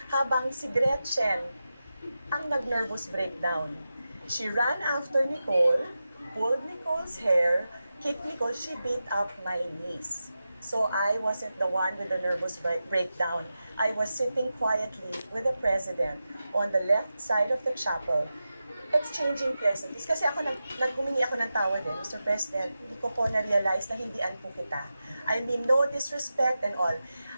habang si Gretchen ang nag-nervous breakdown. She ran after Nicole, pulled Nicole's hair, kicked Nicole, she beat up my niece. So I wasn't the one with the nervous breakdown. I was sitting quietly with the president on the left side of the chapel, exchanging pleasantries. Kasi ako, humingi ako ng tawad eh, Mr. President, hindi ko po na-realize na hindian po kita. I mean, no disrespect and all.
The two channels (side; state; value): both; inverted; correlation -0.92